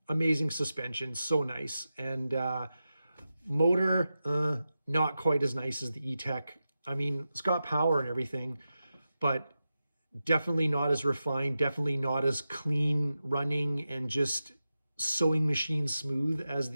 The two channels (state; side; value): inverted; both; correlation -0.91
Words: amazing suspension, so nice. And motor, not quite as nice as the E-Tech. I mean, it's got power and everything, but definitely not as refined, definitely not as clean running and just sewing machine smooth as